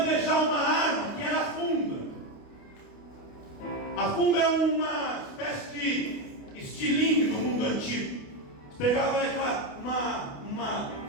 uma arma que era a funda. A funda é uma espécie de estilingue do mundo antigo. Você pegava uma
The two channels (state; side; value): late; right; 28 ms